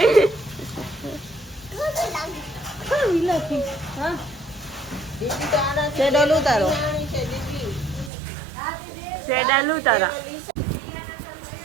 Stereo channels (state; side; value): drops out; left; at 8.1 s